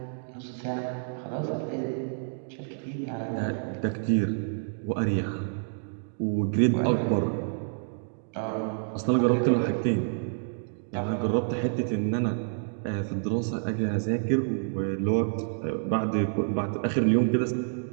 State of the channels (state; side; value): silent; left; digital silence